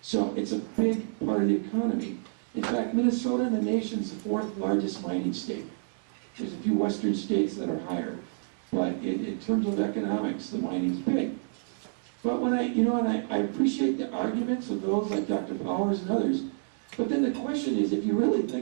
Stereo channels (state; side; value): silent; left; digital silence